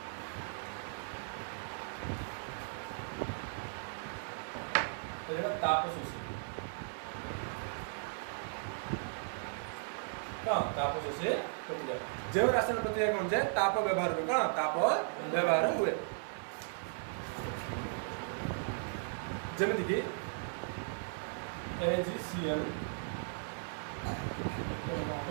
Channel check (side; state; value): left; silent; digital silence